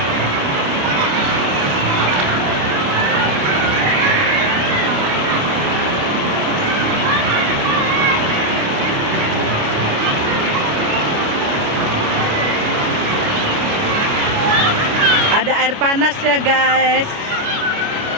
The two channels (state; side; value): late; left; 29 ms